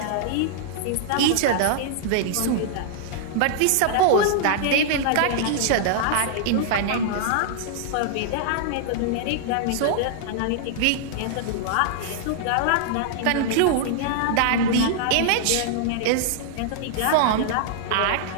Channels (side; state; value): both; different; correlation -0.01